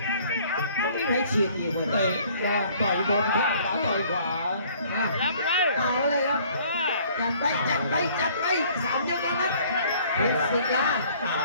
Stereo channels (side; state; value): both; inverted; correlation -0.57